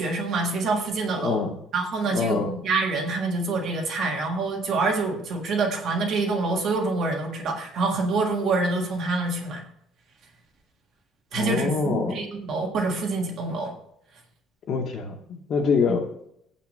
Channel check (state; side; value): normal; both; correlation 0.58